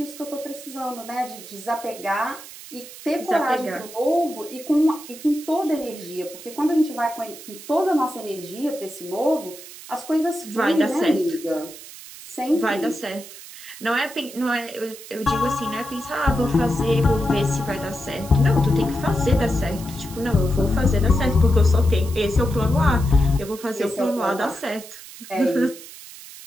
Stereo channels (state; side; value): noise; right; hiss, 15 dB below the sound